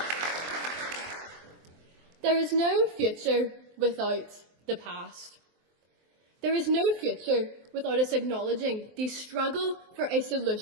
There is no future without the past. There is no future without us acknowledging the struggle for a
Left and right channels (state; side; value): late; left; 23 ms